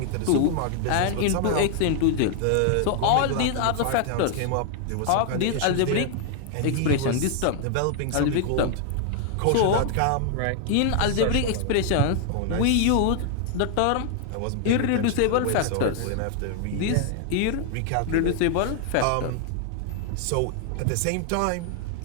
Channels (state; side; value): different; both; correlation 0.00